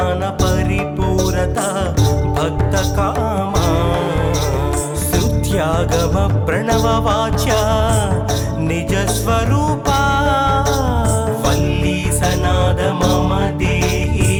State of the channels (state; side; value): identical; both; correlation 1.00